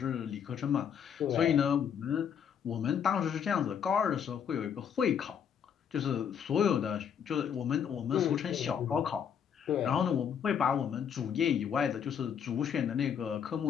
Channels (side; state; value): right; quieter; 7.9 dB